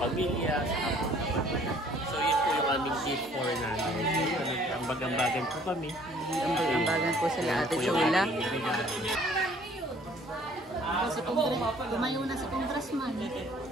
So, yun po yung aming gift for nanay. Ambag-ambagan po kami. Ambag-ambagan po sila Ate Ito po yung Chula. ating regalo. Tumayo na si Congressman.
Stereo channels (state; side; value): normal; both; correlation 0.57